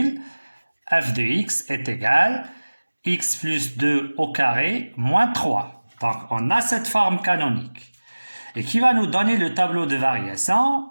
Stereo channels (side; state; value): both; inverted; correlation -1.00